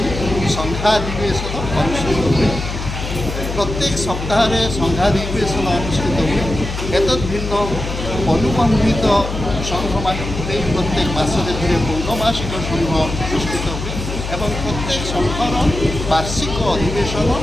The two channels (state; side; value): noise; left; hum, 6 dB below the sound